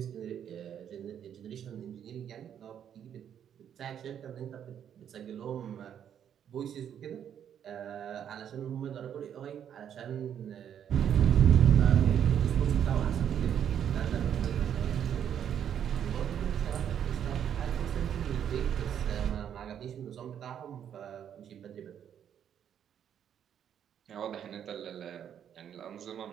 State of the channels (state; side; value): quieter; left; 9.2 dB